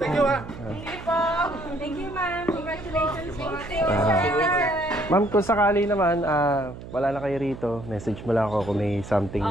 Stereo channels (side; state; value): right; noise; hum, 13 dB below the sound